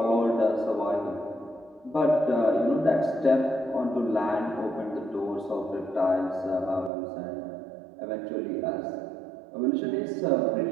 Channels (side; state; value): left; drops out; at 6.9 s